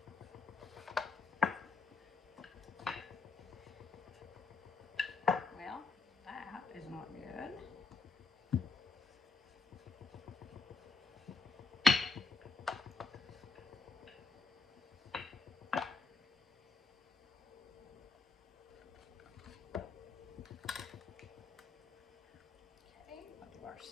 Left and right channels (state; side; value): quieter; right; 4.4 dB